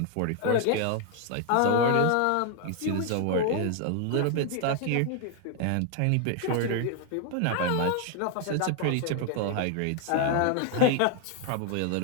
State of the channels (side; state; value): both; different; correlation 0.00